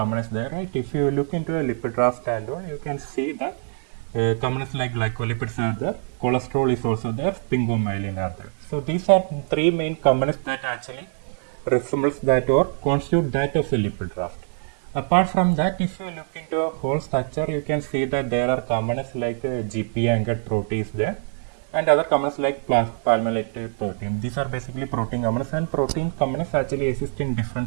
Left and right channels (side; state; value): left; silent; 57 dB below the other